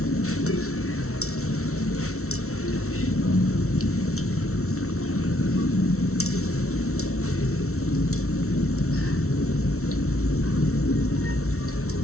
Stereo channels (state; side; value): late; right; 0.63 ms